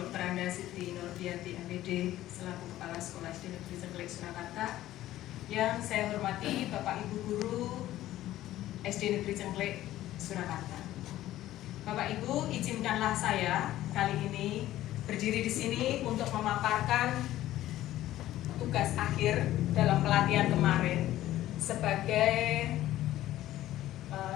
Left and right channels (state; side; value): quieter; right; 14.3 dB